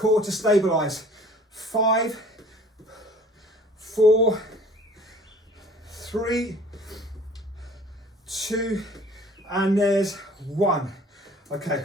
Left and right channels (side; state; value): both; normal; correlation 0.51